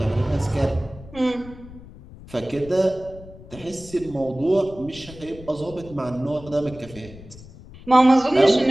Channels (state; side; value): noise; left; rumble, 18 dB below the sound